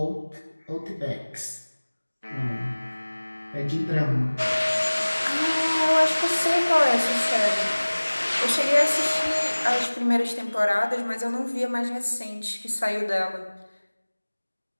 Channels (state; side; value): inverted; both; correlation -1.00